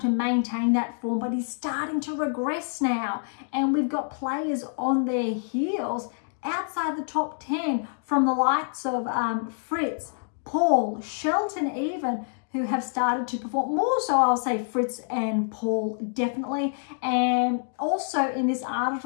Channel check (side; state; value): right; silent; digital silence